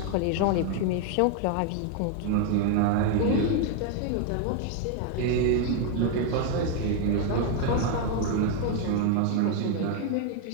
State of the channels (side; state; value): both; different; correlation 0.01